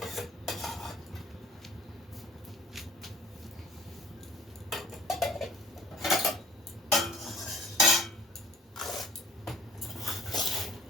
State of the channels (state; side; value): normal; both; correlation 0.54